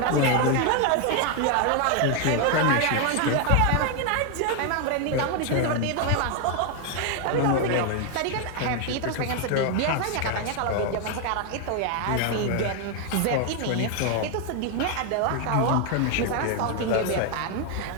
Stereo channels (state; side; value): different; both; correlation 0.01